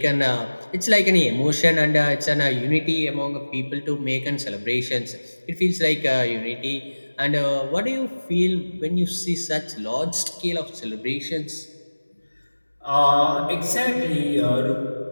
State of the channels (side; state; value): both; inverted; correlation -1.00